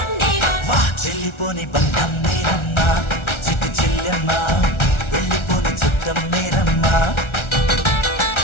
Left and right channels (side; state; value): right; late; 1.3 ms